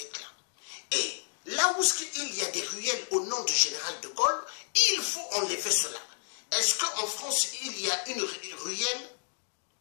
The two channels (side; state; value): right; silent; digital silence